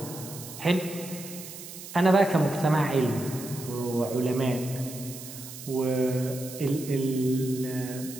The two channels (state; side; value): noise; right; hiss, 13 dB below the sound